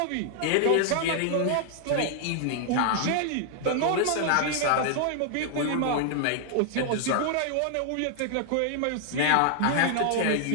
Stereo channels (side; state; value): both; different; correlation 0.00